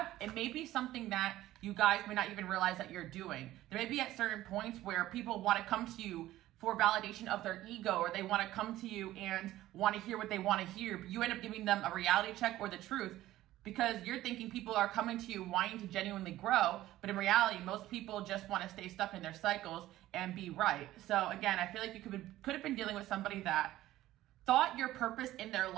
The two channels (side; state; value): left; quieter; 15.0 dB